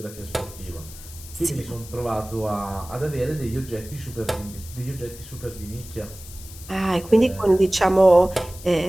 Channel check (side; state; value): left; noise; hiss, 17 dB below the sound